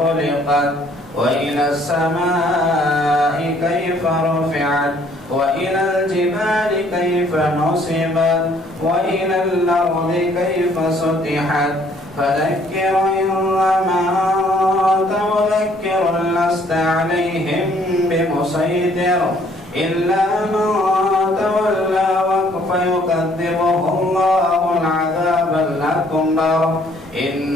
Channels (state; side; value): normal; both; correlation 0.62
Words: وإلى السماء كيف رفعت وإلى الجبال كيف نصبت وإلى الأرض كيف سطحت فذكر إنما أنت مذكر لست عليهم بمسيطر إلا من تولى فيكذبه الله العذاب الأكبر